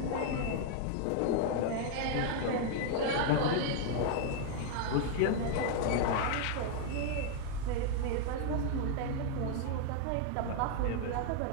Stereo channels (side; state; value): both; different; correlation 0.00